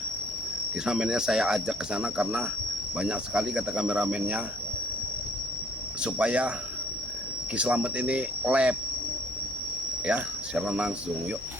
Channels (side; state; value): left; noise; hum, 20 dB below the sound